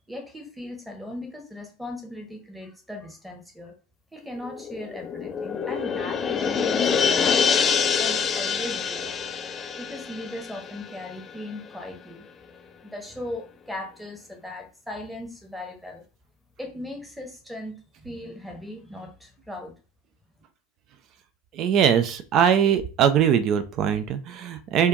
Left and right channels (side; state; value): both; normal; correlation 0.49